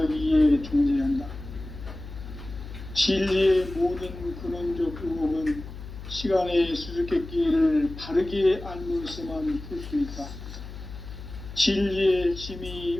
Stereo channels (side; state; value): left; noise; hum, 12 dB below the sound